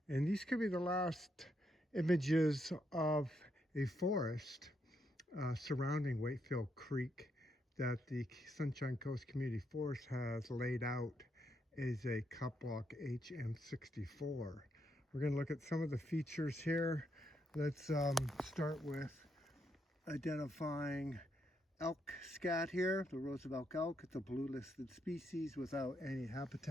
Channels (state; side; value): normal; both; correlation 0.78